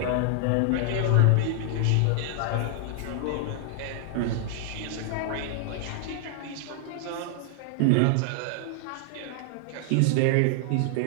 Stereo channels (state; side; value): different; both; correlation 0.00